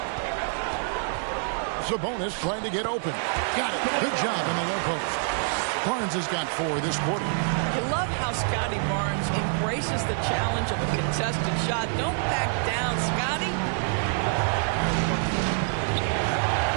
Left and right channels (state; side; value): silent; left; 59 dB below the other